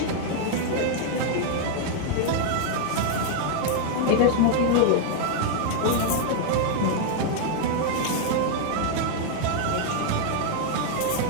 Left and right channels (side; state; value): both; different; correlation 0.00